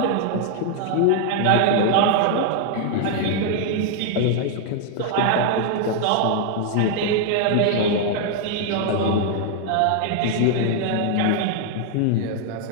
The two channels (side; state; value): both; different; correlation 0.00